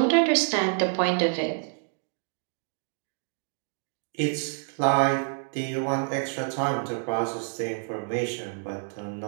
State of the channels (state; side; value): silent; left; 59 dB below the other